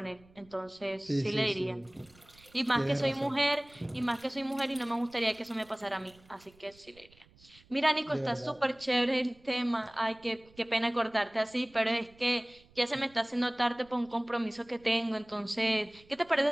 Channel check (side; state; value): right; noise; rumble, 27 dB below the sound